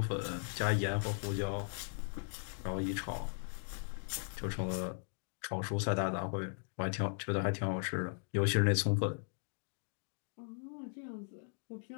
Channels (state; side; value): silent; right; digital silence